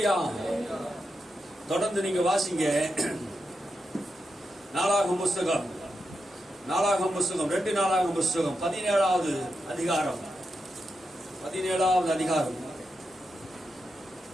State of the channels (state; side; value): normal; both; correlation 0.87